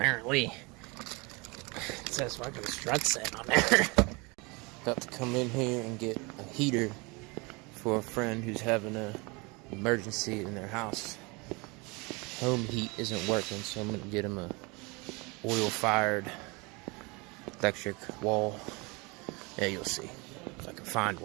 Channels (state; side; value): quieter; left; 27.5 dB